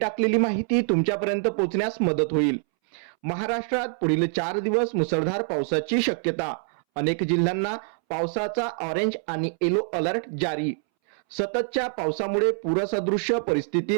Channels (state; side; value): silent; left; 62 dB below the other